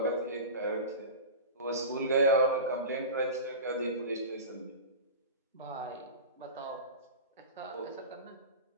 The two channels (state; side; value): inverted; both; correlation -0.30